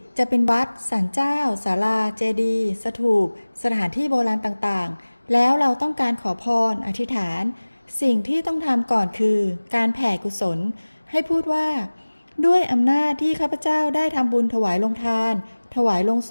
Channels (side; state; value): both; inverted; correlation -1.00